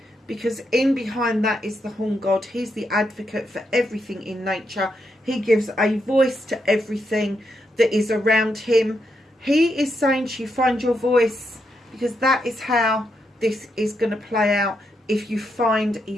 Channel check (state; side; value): normal; both; correlation 0.81